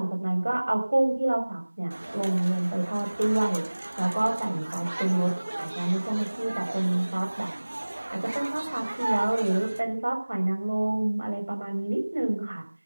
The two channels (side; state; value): both; inverted; correlation -1.00